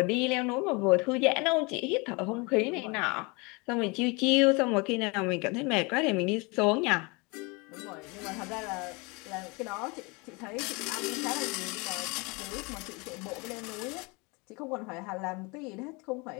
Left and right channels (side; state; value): right; quieter; 28.1 dB